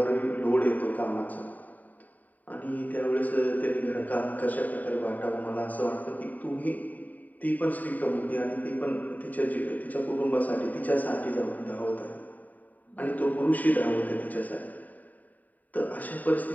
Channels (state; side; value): late; right; 0.078 ms